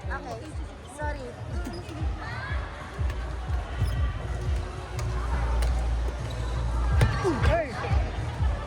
Okay, sorry. Hey!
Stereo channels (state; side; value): identical; both; correlation 1.00